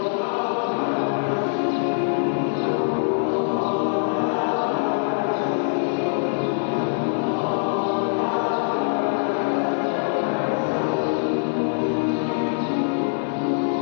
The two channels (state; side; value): silent; right; 63 dB below the other